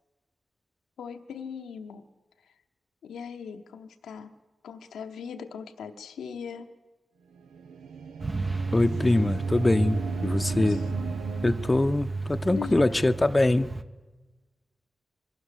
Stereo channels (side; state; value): both; normal; correlation 0.96